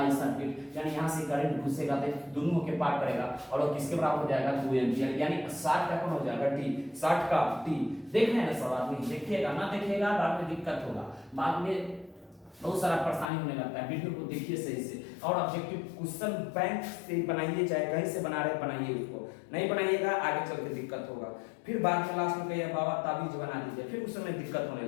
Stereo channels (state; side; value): drops out; right; at 13.3 s